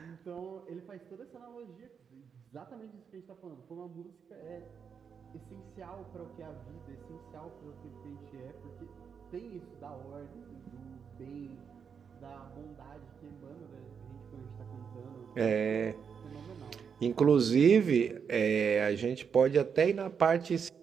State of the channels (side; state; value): left; quieter; 6.7 dB